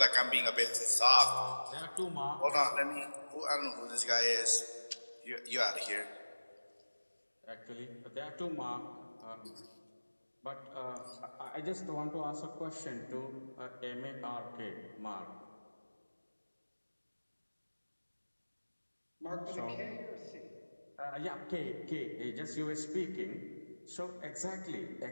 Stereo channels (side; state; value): both; inverted; correlation -1.00